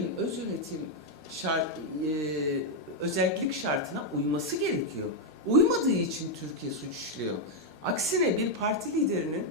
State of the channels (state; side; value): normal; both; correlation 0.00